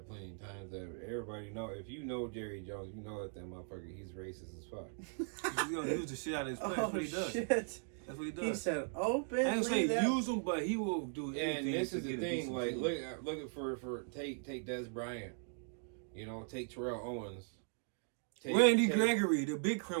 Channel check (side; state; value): left; silent; 52 dB below the other